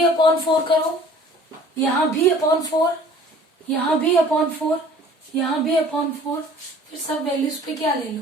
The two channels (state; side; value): normal; both; correlation 0.49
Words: अपॉन 4 करो, यहां भी अपॉन 4, यहां भी अपॉन 4, यहां भी अपॉन 4, फिर सब वैल्यूज पे क्या ले